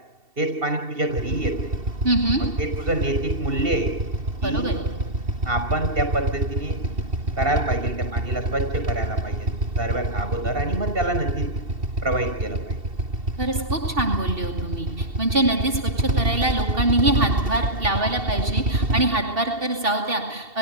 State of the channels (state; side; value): late; left; 2.7 ms